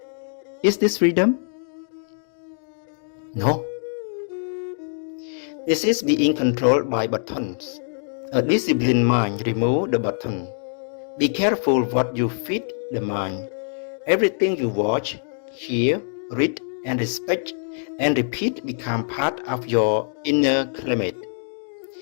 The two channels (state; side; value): silent; right; digital silence